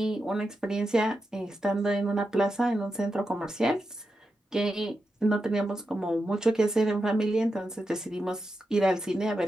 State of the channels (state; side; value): normal; both; correlation 0.88